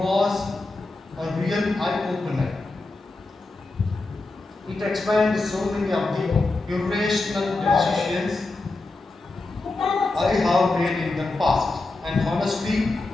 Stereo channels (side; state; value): right; quieter; 3.2 dB